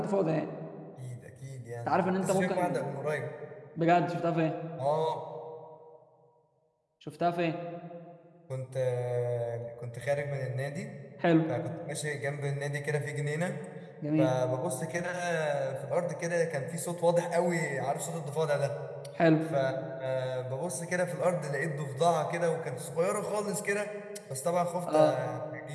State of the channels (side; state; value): both; identical; correlation 1.00